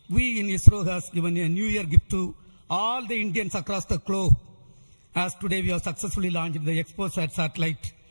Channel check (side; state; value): both; inverted; correlation -1.00